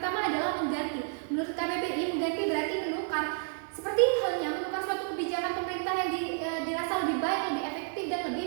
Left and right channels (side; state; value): left; silent; 57 dB below the other